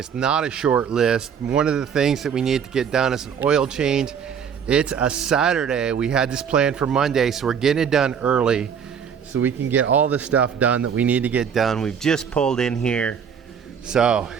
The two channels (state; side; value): quieter; left; 7.4 dB